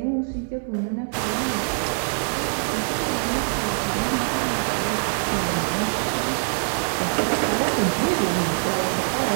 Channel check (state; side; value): silent; left; digital silence